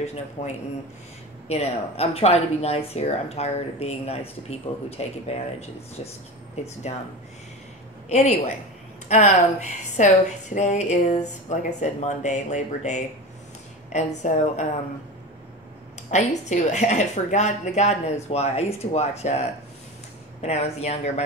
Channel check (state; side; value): normal; both; correlation 0.28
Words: no point in, you know, I'm trying to be nice here. I'm tired of being nice to people who take advantage. It's dumb. Anyway, so today is, like I said, Monday, Labor Day. And so I used to, I forgot, God knows why. I used to watch, when I was younger,